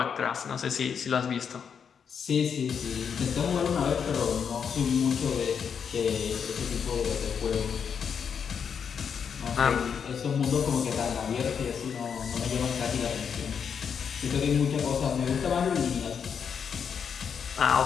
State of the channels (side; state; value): right; quieter; 7.0 dB